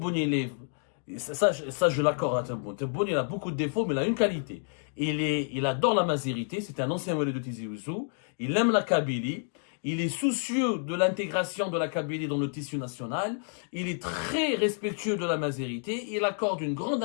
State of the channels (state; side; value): silent; right; 58 dB below the other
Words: ça, je l'accorde à Tebboune. Tebboune, il a beaucoup de défauts, mais il a une qualité. Il adore la mazérité. C'est un ancien relais de Tizi Ouzou. Il aime la Kabylie. Il est soucieux de l'intégration de la Kabylie dans le tissu national. Il est très respectueux de la mazérité. Il accorde une grande